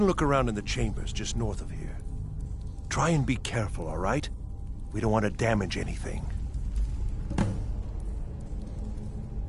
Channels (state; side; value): identical; both; correlation 1.00